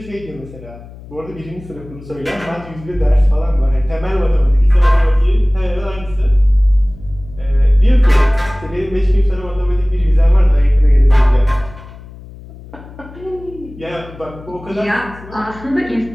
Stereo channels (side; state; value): left; noise; hum, 18 dB below the sound